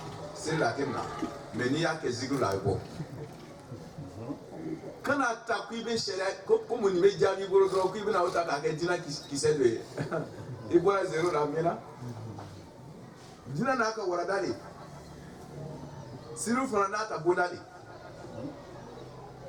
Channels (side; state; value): both; identical; correlation 1.00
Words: seri la kenna mais ni ya ke zigu la be bo kana ta ku ibe shere ko mu ni be jami boro ko ibe na uta ka ke dina kisedwe e bora zero na mena dina na ka wara dali siru fana na ta bodali